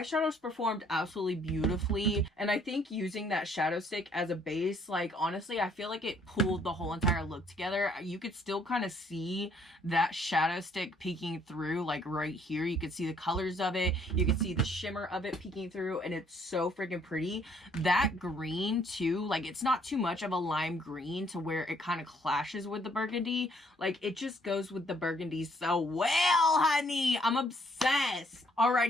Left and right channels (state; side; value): normal; both; correlation 0.65